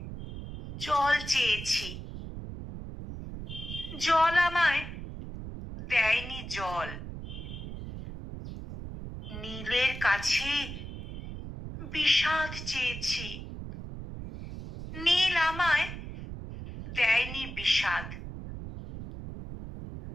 জল চেয়েছি, জল আমায় দেয়নি জল। নীলের কাছে বিষাদ চেয়েছি, নীল আমায় দেয়নি বিষাদ।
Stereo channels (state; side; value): noise; right; rumble, 9 dB below the sound